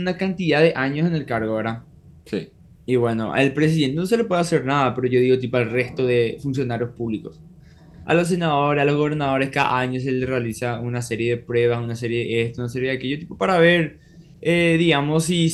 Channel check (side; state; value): both; identical; correlation 1.00